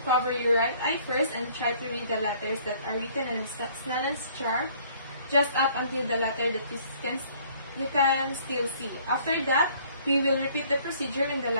your right eye first and try to read the letters that are written in Snellen's chart just up until the letter that you can still see. After that, we will repeat the procedure in the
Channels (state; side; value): inverted; both; correlation -0.58